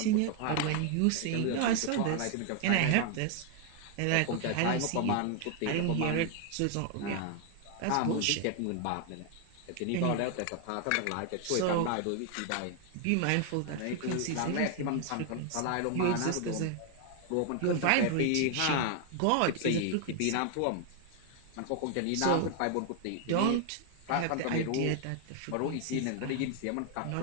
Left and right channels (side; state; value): both; different; correlation 0.01